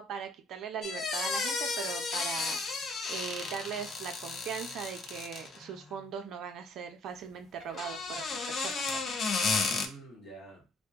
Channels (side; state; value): both; normal; correlation 0.62